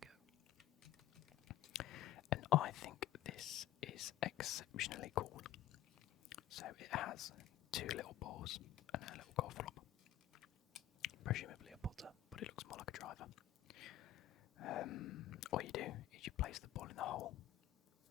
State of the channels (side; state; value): right; quieter; 12.8 dB